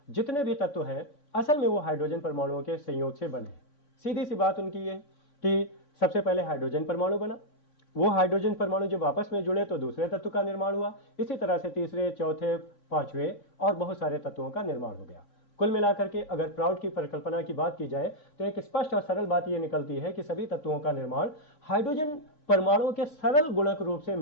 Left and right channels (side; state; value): right; late; 3.5 ms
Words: जितने भी तत्व हैं असल में वो हाइड्रोजन परमाणुओं के संयोग से बने हैं। सीधी सी बात उनकी ये कि सबसे पहले हाइड्रोजन परमाणु बना, वो हाइड्रोजन परमाणु जब आपस में जुड़े तो दूसरे तत्व का निर्माण हुआ। इसी तरह से तीसरे, चौथे, पांचवें और बहुत सारे तत्वों का निर्माण हो गया। कुल मिलाकर के अगर प्राउट की परिकल्पना की बात की जाए तो एक स्पष्ट और सरल बात यह निकलती है कि सभी तत्वों का निर्माण हाइड्रोजन परमाणुओं के सरल गुणक रूप से